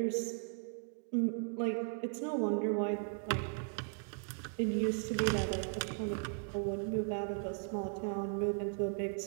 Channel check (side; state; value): left; silent; 53 dB below the other